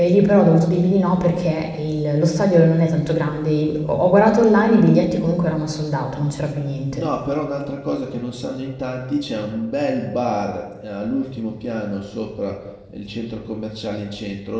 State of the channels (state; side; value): identical; both; correlation 1.00